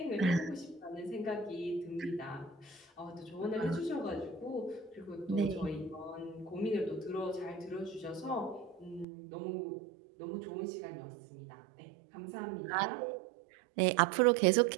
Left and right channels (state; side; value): drops out; left; at 9.1 s